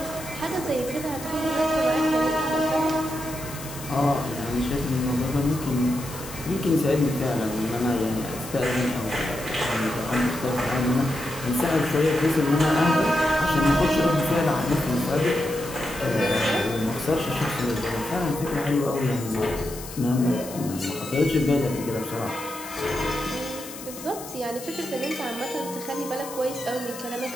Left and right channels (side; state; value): left; noise; hiss, 13 dB below the sound